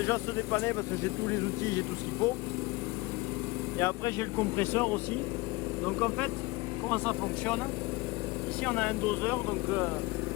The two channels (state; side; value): quieter; right; 22.8 dB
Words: se dépanner parce que j'ai tous les outils, j'ai tout ce qu'il faut. Et après, j'ai le compresseur aussi. Donc en fait, comment ça fonctionne? Ici, on a un doseur. Donc